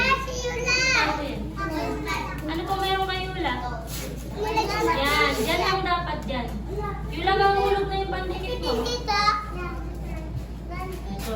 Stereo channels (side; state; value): both; identical; correlation 1.00